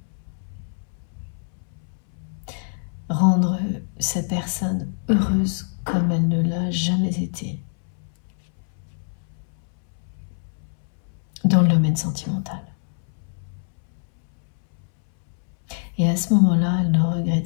rendre cette personne heureuse comme elle ne l'a jamais été dans le domaine sentimental. Et à ce moment-là, elle ne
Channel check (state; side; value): silent; right; 62 dB below the other